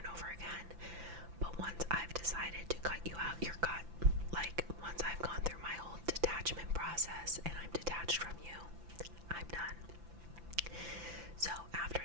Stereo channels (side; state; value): left; late; 5.9 ms